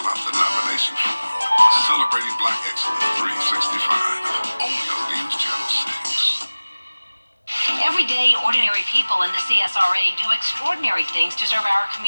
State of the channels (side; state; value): both; inverted; correlation -1.00